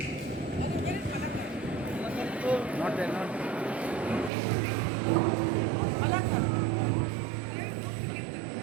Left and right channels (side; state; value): left; drops out; at 4.3 s